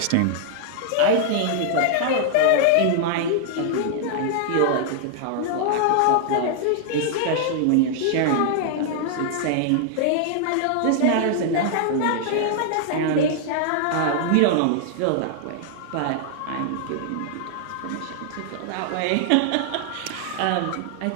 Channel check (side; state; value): both; different; correlation -0.01